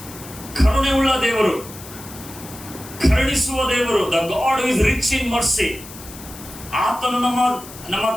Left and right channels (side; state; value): left; noise; hiss, 16 dB below the sound